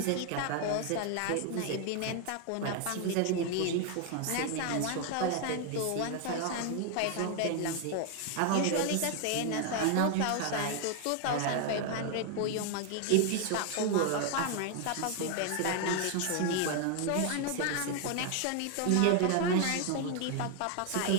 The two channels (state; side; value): different; both; correlation 0.00